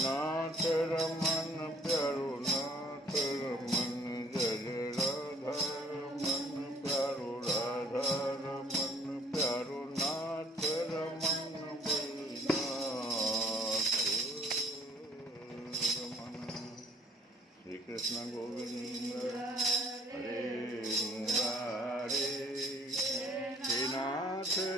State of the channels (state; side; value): normal; both; correlation 0.57